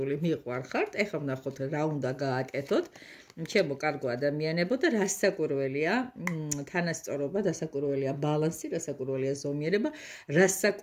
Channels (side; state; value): both; identical; correlation 1.00